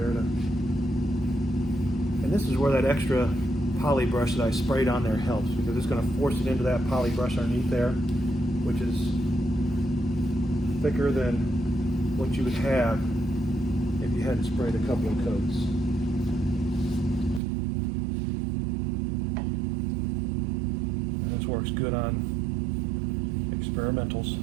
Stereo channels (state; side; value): drops out; left; at 17.4 s